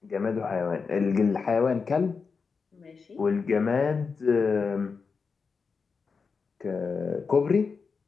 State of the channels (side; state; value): right; quieter; 5.1 dB